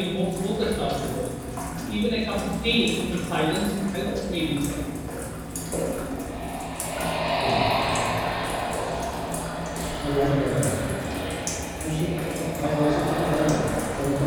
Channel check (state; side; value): identical; both; correlation 1.00